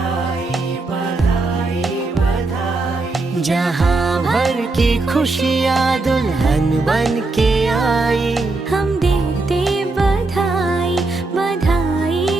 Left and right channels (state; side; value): quieter; left; 3.3 dB